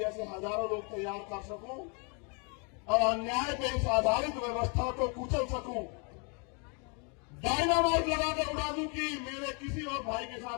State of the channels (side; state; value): right; quieter; 35.8 dB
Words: हजारों लोग तैयार कर सकूं और अन्याय पे इस आधारित व्यवस्था को कुचल सकूं, डायनामाइट लगाकर उड़ा दूं कि मेरे किसी और भाई के